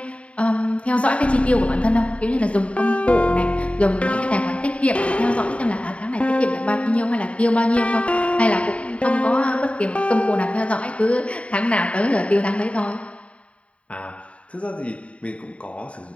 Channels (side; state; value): right; late; 0.063 ms